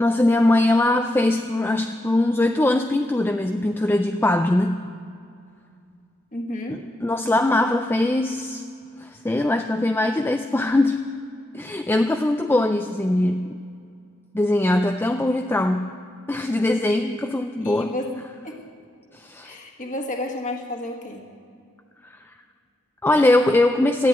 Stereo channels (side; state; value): both; normal; correlation 0.85